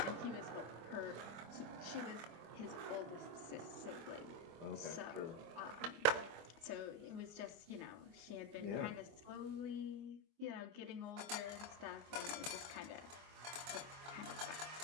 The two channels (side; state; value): left; late; 24 ms